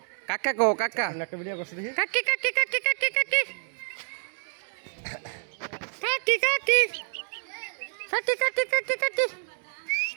কাকা কো কাকা একটা ভিডিও করছ দেখি কাকি কাকি কাকি কাকি কাকি কাকি কাকি কাকি কাকি কাকি কাকি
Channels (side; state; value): left; silent; 59 dB below the other